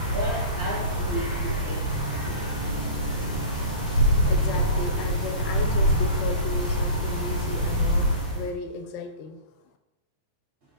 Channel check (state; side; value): inverted; both; correlation -0.37